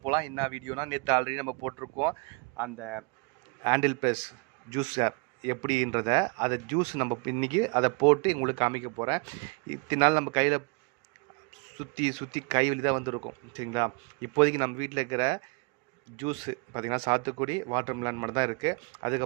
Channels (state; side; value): quieter; left; 31.9 dB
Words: போகலாம். என்ன வீடியோனா, நேற்று ஆல்ரெடி நம்ம போட்டிருக்கோம் அந்த ஹேண்டில் ப்ளஸ் ஜூஸர் எப்படின்றத. அதை ஜூஸ் நம்ம இன்றைக்கி அதை போட்டு உங்களுக்கு காமிக்க போகிறேன். இத்தனை நாள் நம்ம கையில் சுற்றி கை வலி தான் வந்துருக்கும், சரிங்களா. இப்போதைக்கு நம்ம வீட்டில் இருக்கிற ஜூஸு பார்த்திங்கன்னா சாத்துக்குடி, வாட்டர் மெலன் மட்டும் தான் இருக்குது.